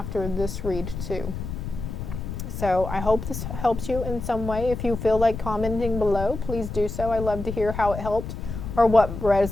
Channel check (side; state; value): left; noise; rumble, 7 dB below the sound